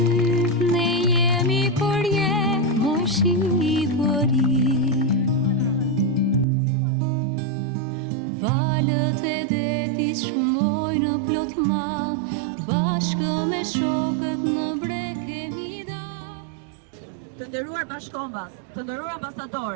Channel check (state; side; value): drops out; left; at 6.5 s